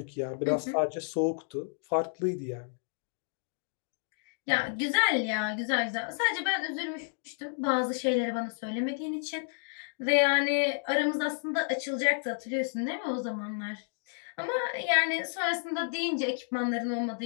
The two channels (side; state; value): right; silent; 57 dB below the other